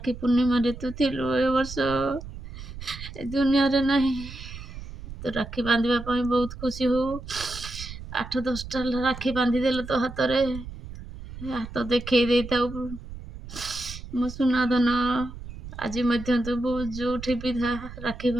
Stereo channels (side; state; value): right; noise; rumble, 12 dB below the sound